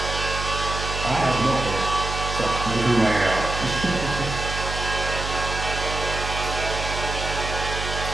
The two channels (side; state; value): right; noise; hum, 5 dB below the sound